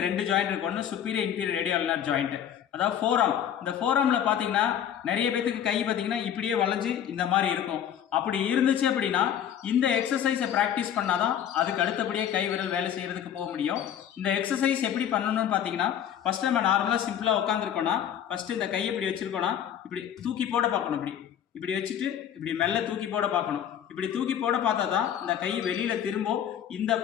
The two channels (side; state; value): right; quieter; 9.6 dB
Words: 2 ஜாயிண்ட் இருக்கு. ஒன்று சுப்பீரியர் இன்டீரியர் ரேடியல் ஜாயிண்ட், அதாவது ஃபோராம். இந்த ஃபோராமில் பார்த்தீங்கன்னா நிறைய பேத்துக்கு கை பார்த்தீங்கன்னா இப்படியே வளைஞ்சு இந்த மாதிரி இருக்கும். அப்படி இருந்துச்சு அப்படின்னா இந்த எக்ஸசைஸை ப்ராக்டிஸ் பண்ணாதான் அதுக்கு அடுத்தபடியே கை விரல் வேலை செய்யறதுக்கு போக முடியும். இந்த எக்ஸசைஸ் எப்படி பண்ணணும்னு பார்த்தீங்கன்னா ஃபர்ஸ்ட் நம்ம நார்மலாக சிம்பிளாக உட்காந்துருக்கோம்னா ஃபர்ஸ்ட் இந்த கையை இப்படி வச்சிருக்கோம்னா இப்படி தூக்கி போட பார்க்கணும். இப்படி வச்சுட்டு இப்படி மெல்ல தூக்கி போட பார்க்கணும். இப்படி தூக்கி போட பார்த்தா தான் இந்த கை வெளியில திரும்பும். இந்த